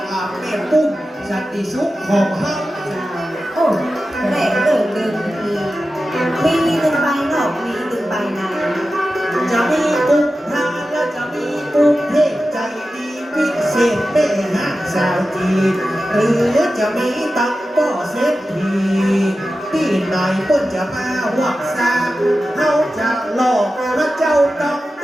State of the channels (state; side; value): normal; both; correlation 0.93